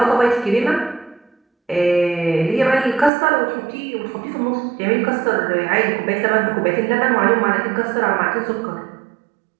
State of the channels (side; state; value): left; drops out; at 3.1 s